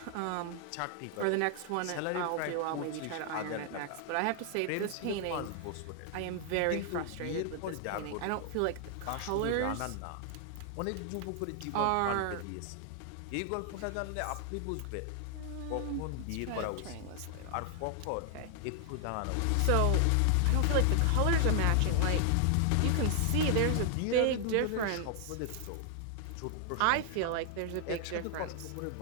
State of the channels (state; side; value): different; both; correlation 0.00